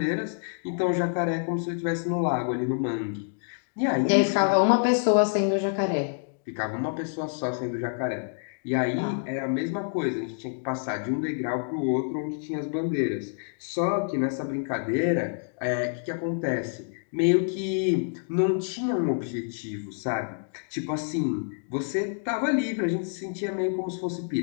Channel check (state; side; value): silent; right; digital silence